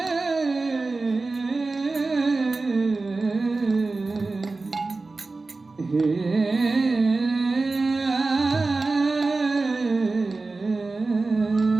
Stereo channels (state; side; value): quieter; left; 3.6 dB